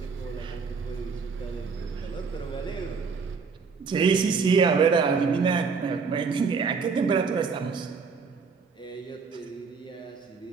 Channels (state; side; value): quieter; left; 5.3 dB